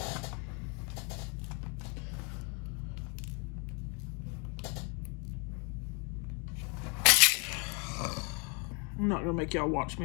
I'm not gonna make y'all watch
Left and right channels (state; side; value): quieter; right; 34.5 dB